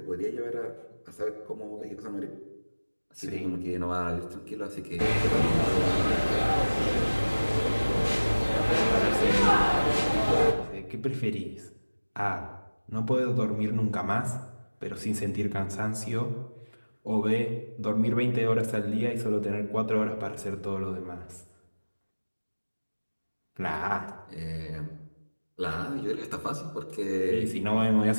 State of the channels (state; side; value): inverted; both; correlation -1.00